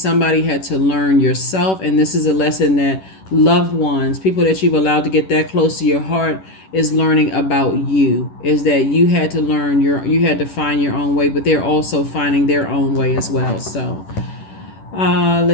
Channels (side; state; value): right; late; 11 ms